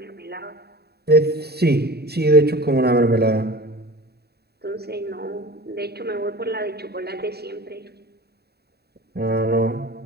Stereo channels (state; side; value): late; left; 0.47 ms